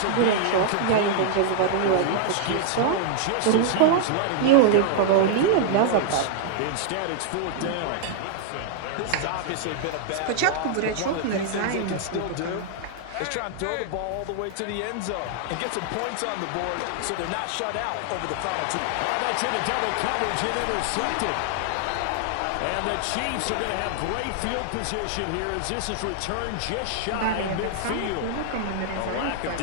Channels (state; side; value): different; both; correlation -0.01